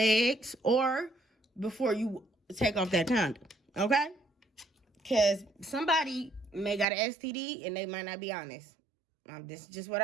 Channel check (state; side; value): drops out; left; at 6.9 s